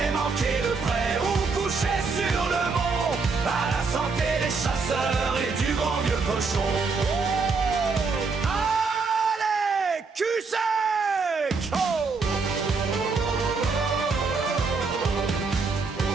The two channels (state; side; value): quieter; left; 4.5 dB